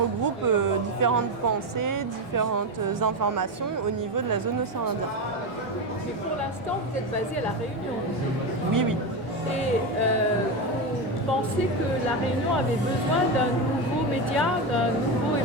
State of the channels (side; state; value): both; normal; correlation 0.14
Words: différentes pensées, différentes informations au niveau de la zone océan Indien. Mais pour l'instant, vous êtes basé à La Réunion. Oui, oui. Et vous pensez que La Réunion avait besoin d'un nouveau média, d'un nouveau